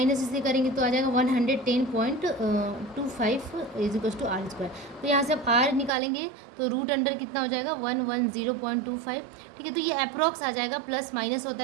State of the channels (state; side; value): drops out; left; at 5.9 s